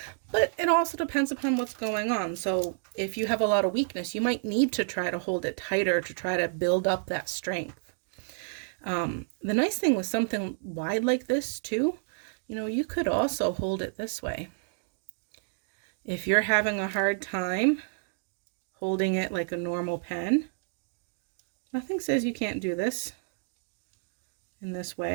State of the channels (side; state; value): left; silent; digital silence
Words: But it also depends upon what's going on. So if you have a lot of weakness, you might need to try to hold it tighter to try to build up that strength. The nice thing with something wide like this too, you could also hold it this way. If you're having a hard time holding it like a normal pen, nothing says you can't do this in this